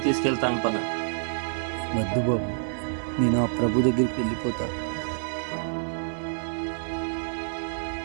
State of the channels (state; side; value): silent; left; digital silence